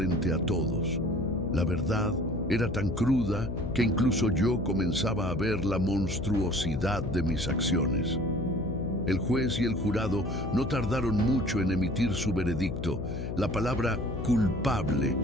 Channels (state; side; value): noise; left; hum, 5 dB below the sound